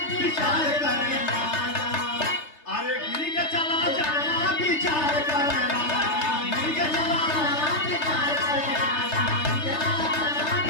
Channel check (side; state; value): right; late; 3.3 ms